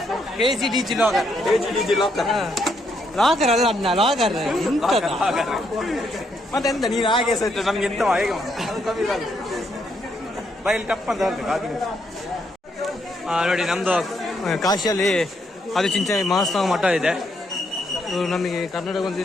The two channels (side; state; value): both; normal; correlation 0.75